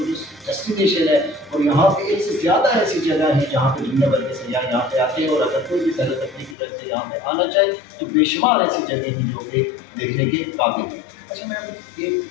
ڈیسٹینیشن ہے اور یہاں پہ ایک سے زیادہ ایسی جگہ ہیں جہاں پہ دنیا بھر کے سیاح یہاں پہ آتے ہیں, اور اگر کوئی بھی سیر تفریح کی طرف سے یہاں پہ آنا چاہے تو بے شمار ایسی جگہیں ہیں جو کہ دیکھنے کے قابل ہیں. اچھا میم, ایک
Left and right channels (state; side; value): drops out; right; at 6.6 s